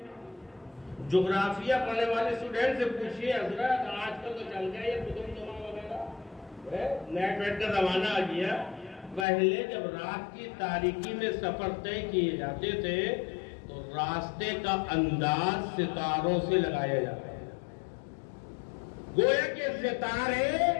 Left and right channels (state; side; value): drops out; right; at 9.2 s